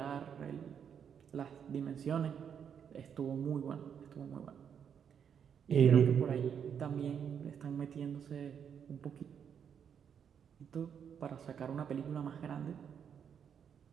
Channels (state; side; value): quieter; left; 7.8 dB